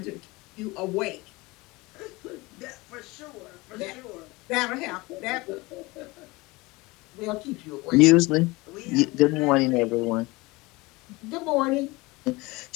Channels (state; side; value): quieter; right; 22.9 dB